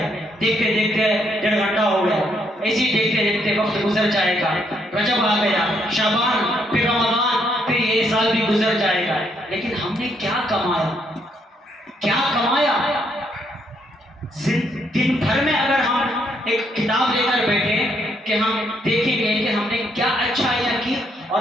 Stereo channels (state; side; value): normal; both; correlation 0.73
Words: دیکھتے دیکھتے 1.5 گھنٹہ ہو گیا، ایسے دیکھتے دیکھتے وقت گزر جائے گا. رجب آ گیا، شعبان، پھر رمضان، پھر یہ سال بھی گزر جائے گا. لیکن ہم نے کیا کمایا، کیا کمایا؟ دن بھر میں اگر ہم ایک کتاب لے کر بیٹھے کہ ہم دیکھیں گے کہ ہم نے کیا اچھائیاں کی